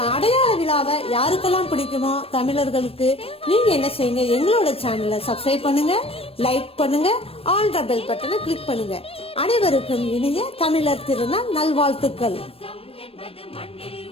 அடையாள விழாவை யாருக்கெல்லாம் பிடிக்குமோ தமிழர்களுக்கு நீங்க என்ன செய்யுங்க, எங்களோட சேனலை சப்ஸ்கிரைப் பண்ணுங்க, லைக் பண்ணுங்க, ஆல் த பெல் பட்டனை கிளிக் பண்ணுங்க. அனைவருக்கும் இனிய தமிழர் திருநாள் நல்வாழ்த்துக்கள்.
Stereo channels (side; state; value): right; late; 0.28 ms